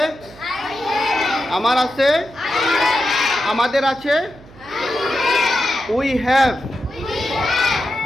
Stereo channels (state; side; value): noise; right; hum, 22 dB below the sound